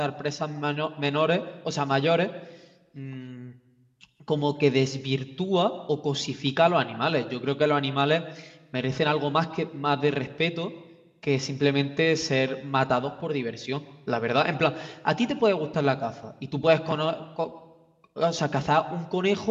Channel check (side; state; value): both; identical; correlation 1.00